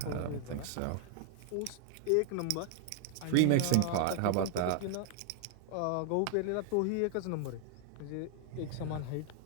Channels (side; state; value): both; different; correlation 0.00